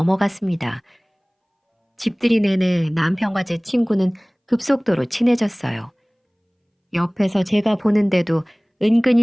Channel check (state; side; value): identical; both; correlation 1.00